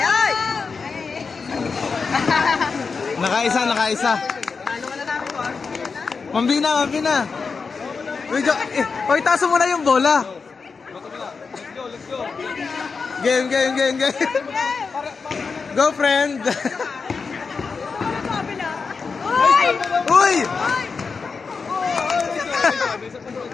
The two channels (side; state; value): right; quieter; 5.0 dB